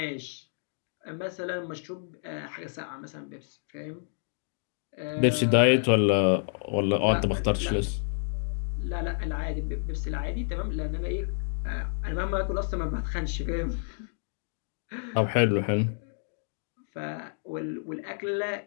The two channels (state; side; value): silent; right; digital silence